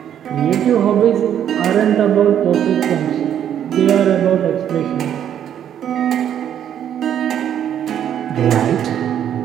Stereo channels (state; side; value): quieter; left; 9.8 dB